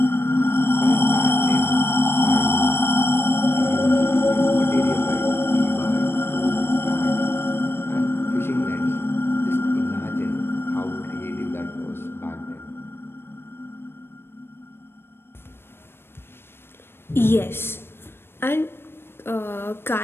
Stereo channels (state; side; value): late; right; 0.11 ms